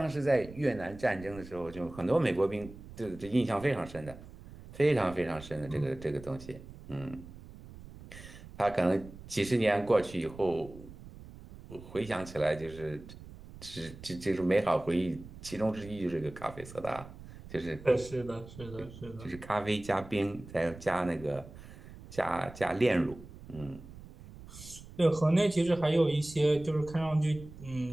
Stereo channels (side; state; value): right; noise; rumble, 16 dB below the sound